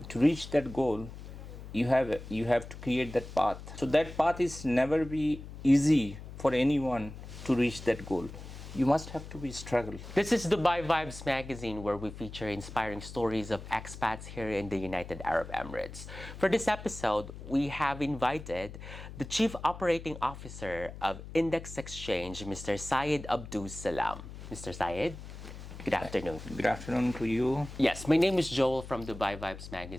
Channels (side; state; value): left; noise; hum, 12 dB below the sound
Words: reach that goal, you have to create that path. So that path is never be easy for anyone to reach that goal. You must have to be struggle. This is Dubai Vibes magazine, where we feature inspiring stories of expats here in the United Arab Emirates. For this episode, we have invited the Chief Operating Officer of Index Exchange, Mr. Syed Abdus Salam. Mr. Syed, good afternoon. Good afternoon to you. Yes, my name is Joel from Dubai Vibes